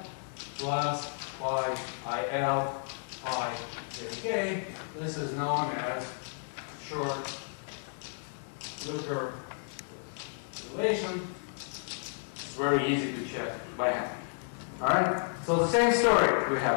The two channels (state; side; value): silent; right; digital silence